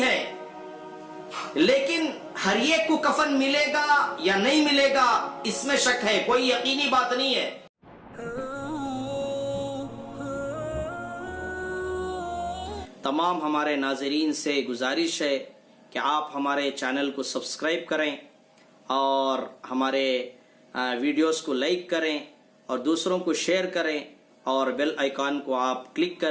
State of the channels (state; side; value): identical; both; correlation 1.00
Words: ہے، لیکن ہر ایک کو کفن ملے گا یا نہیں ملے گا اس میں شک ہے، کوئی یقینی بات نہیں ہے. تمام ہمارے ناظرین سے گزارش ہے کہ آپ ہمارے چینل کو سبسکرائب کریں اور ہمارے ویڈیوز کو لائک کریں اور دوسروں کو شیئر کریں اور بیل آئیکن کو آپ کلک